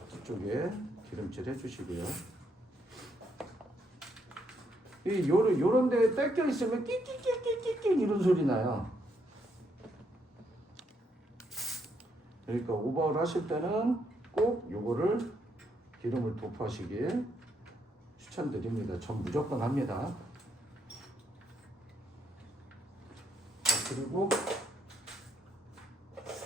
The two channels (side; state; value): both; normal; correlation 0.76